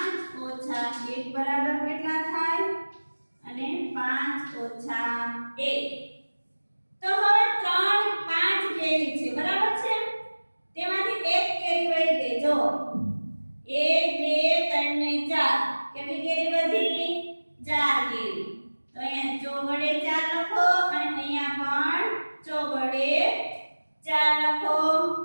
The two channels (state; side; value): inverted; both; correlation -1.00